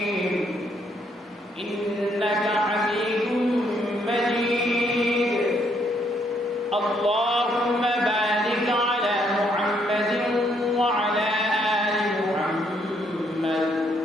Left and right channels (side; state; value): both; normal; correlation 0.71